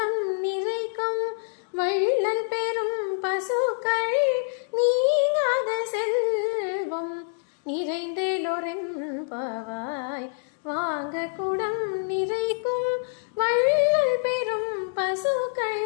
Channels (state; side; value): silent; right; digital silence